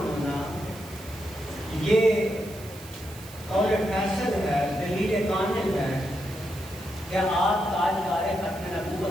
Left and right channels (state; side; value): noise; right; hiss, 18 dB below the sound